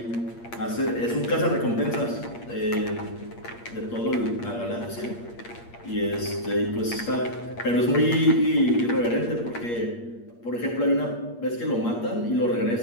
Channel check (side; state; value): right; late; 8.5 ms